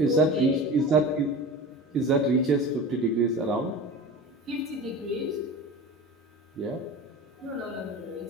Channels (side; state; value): both; normal; correlation 0.33